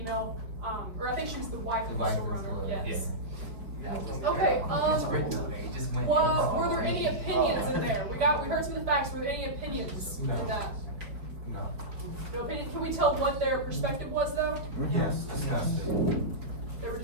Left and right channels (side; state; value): left; late; 4.8 ms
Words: or I think she was the wife of the store owner, yes. Okay, were there any opinions in there? We heard some of the facts, were there any opinions in that? No opinion, can we tell what their perspective was though? Yes, disgusting. They were